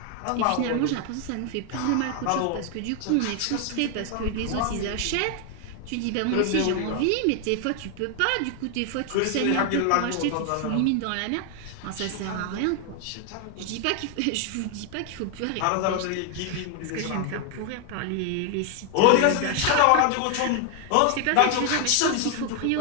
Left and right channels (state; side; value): different; both; correlation 0.00